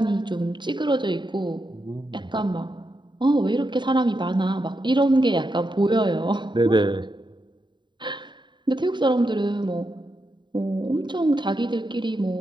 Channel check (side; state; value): left; late; 0.22 ms